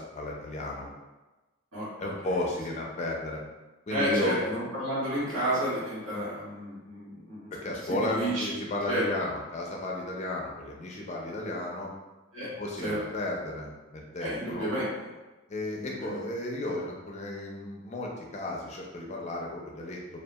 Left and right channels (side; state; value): both; normal; correlation 0.21